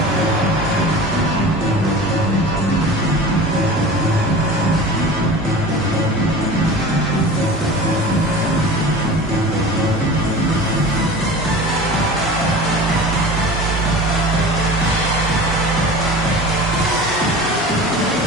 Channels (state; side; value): normal; both; correlation 0.36